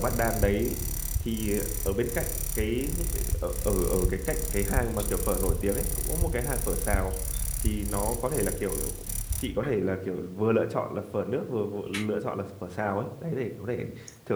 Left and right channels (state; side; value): identical; both; correlation 1.00